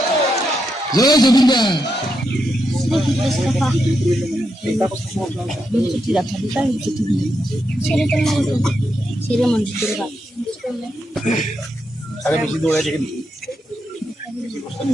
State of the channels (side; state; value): both; normal; correlation 0.83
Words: জয় জুবিন দা।